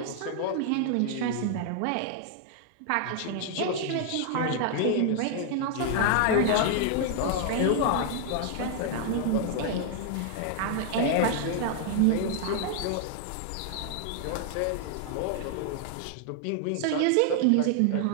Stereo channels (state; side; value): different; both; correlation 0.00